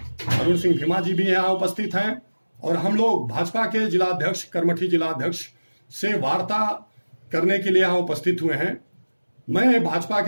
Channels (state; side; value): inverted; both; correlation -1.00